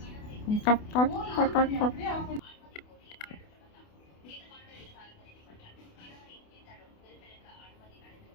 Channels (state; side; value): late; right; 28 ms